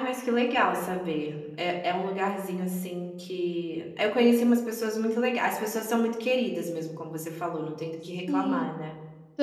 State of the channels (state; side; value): identical; both; correlation 1.00